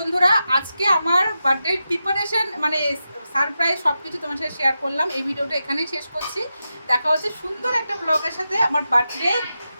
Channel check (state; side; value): inverted; both; correlation -0.90